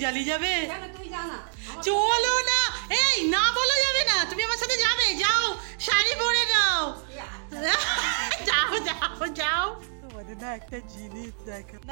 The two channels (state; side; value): silent; left; 58 dB below the other